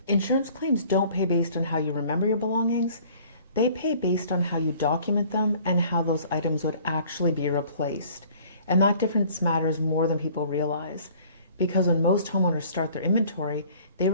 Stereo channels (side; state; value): both; inverted; correlation -0.52